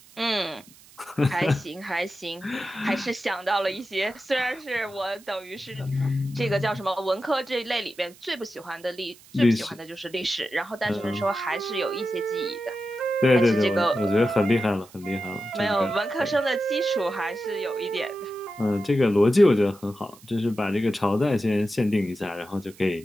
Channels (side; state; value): right; noise; hiss, 24 dB below the sound